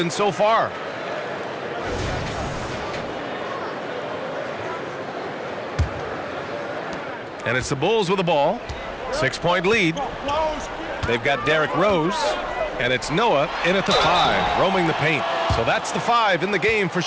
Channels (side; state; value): both; identical; correlation 1.00